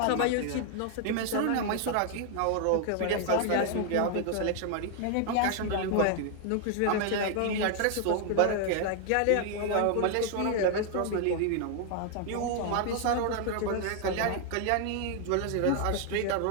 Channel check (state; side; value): different; both; correlation 0.00